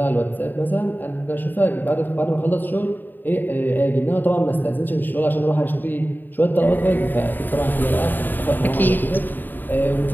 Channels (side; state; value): right; late; 0.090 ms